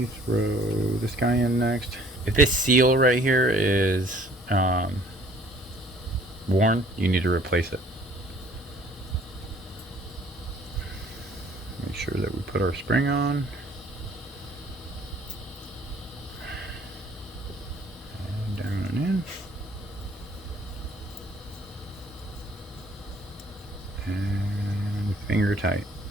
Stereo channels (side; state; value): both; normal; correlation 0.56